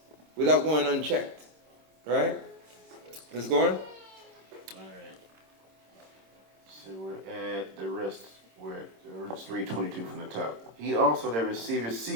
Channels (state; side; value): late; left; 26 ms